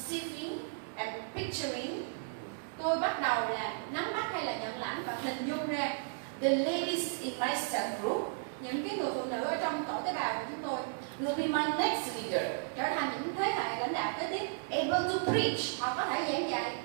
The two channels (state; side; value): silent; left; 55 dB below the other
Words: and picturing Tôi bắt đầu là nắm bắt hay là nhận lãnh và hình dung ra the ladies in my cell group những cái người phụ nữ ở trong tổ tế bào của chúng tôi will be my next leader, trở thành những thế hệ lãnh đạo kế tiếp. able to preach, Họ có thể giảng dạy